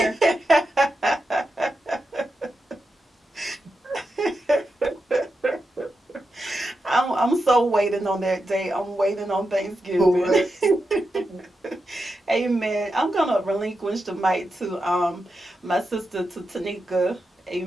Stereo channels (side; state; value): both; normal; correlation 0.88